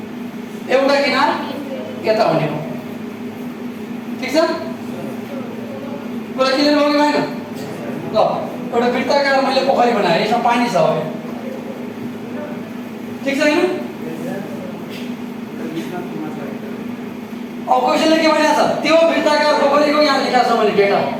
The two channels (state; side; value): identical; both; correlation 1.00